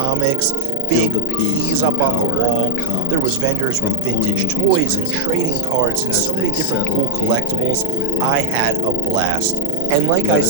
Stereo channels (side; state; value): both; different; correlation 0.00